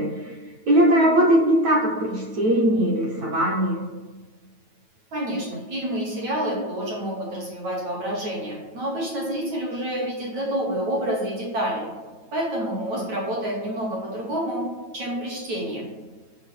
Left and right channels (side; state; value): left; late; 9.1 ms